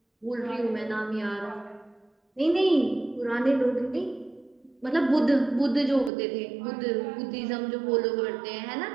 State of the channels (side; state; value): left; drops out; at 6.1 s